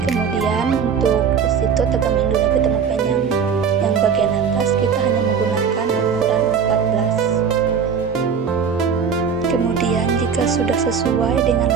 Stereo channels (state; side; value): quieter; left; 6.6 dB